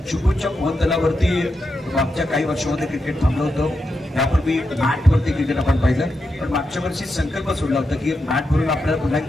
चिपळूणच्या मोहनतलावरती मागच्या काही वर्षांमध्ये क्रिकेट थांबलं होतं। यापूर्वी मॅटवरती क्रिकेट आपण पाहिलं, पण मागच्या वर्षी संकल्प सोडला होता की मॅट भरून आपल्याला पुन्हा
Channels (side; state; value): both; normal; correlation 0.86